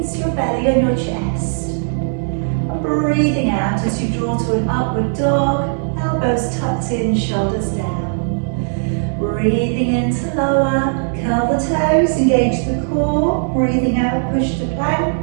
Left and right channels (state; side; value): silent; left; digital silence